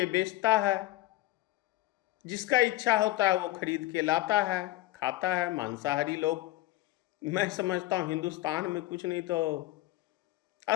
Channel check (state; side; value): quieter; right; 16.6 dB